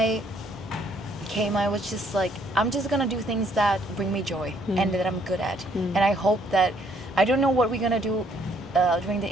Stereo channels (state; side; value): normal; both; correlation 0.66